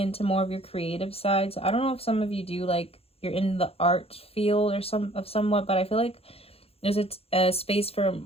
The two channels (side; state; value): right; late; 0.29 ms